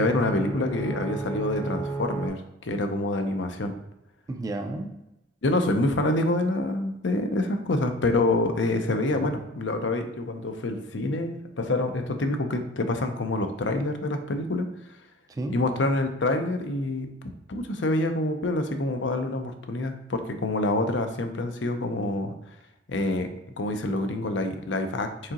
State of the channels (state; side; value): normal; both; correlation 0.41